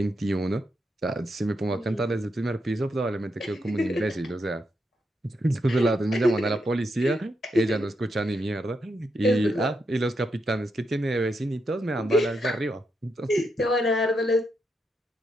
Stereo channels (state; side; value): normal; both; correlation 0.82